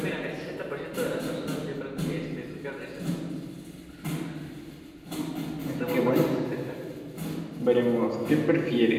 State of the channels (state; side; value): identical; both; correlation 1.00